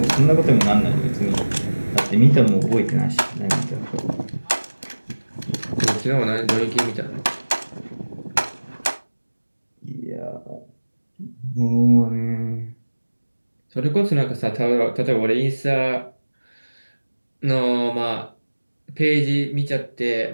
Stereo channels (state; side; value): inverted; both; correlation -1.00